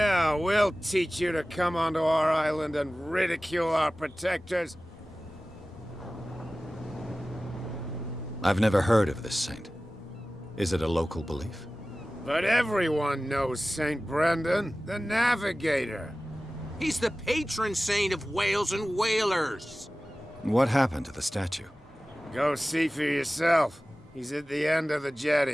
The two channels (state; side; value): normal; both; correlation 0.97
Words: we'll teach you to come onto our island and ridicule our protectors. I've never heard of this saint. Is it a local belief? But everyone knows St. Brendan, the navigator. He's the patron saint of whales and whalers. What happened to the statue? Go see for yourself. He's at the end of the